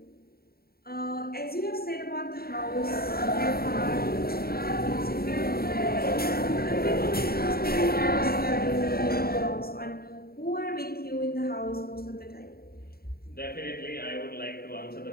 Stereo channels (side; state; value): right; late; 0.44 ms